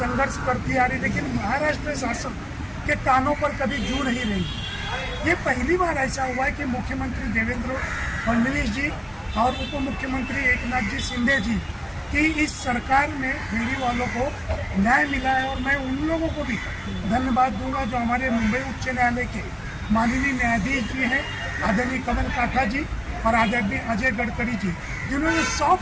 करती आ रही, लेकिन महाराष्ट्र शासन के कानों पर कभी जू नहीं रही। ये पहली बार ऐसा हुआ है कि मुख्यमंत्री देवेंद्र फडणवीस जी और उप मुख्यमंत्री एकनाथ जी शिंदे जी कि इस सरकार में फेरी वालों को न्याय मिला है। और मैं उन लोगों को भी धन्यवाद दूंगा जो हमारे मुंबई उच्च न्यायालय के माननीय न्यायाधीश जी हैं, आदरणीय कमल काठा जी और आदरणीय अजय गडकरी जी, जिन्होंने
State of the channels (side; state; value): both; identical; correlation 1.00